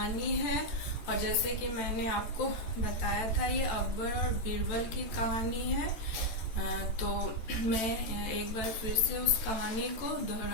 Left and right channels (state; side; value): late; right; 14 ms